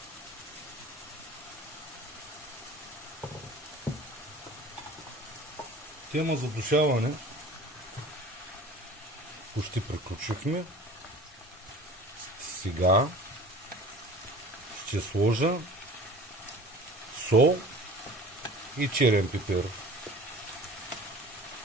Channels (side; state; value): both; normal; correlation 0.43